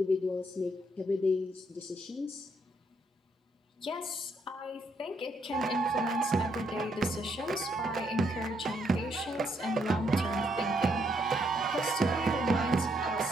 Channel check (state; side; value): normal; both; correlation 0.74